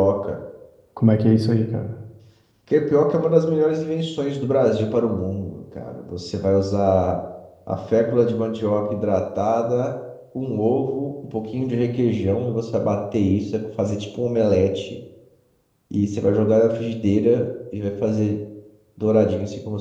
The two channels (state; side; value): identical; both; correlation 1.00